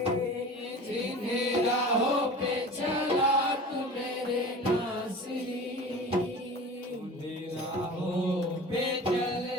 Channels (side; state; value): both; normal; correlation 0.37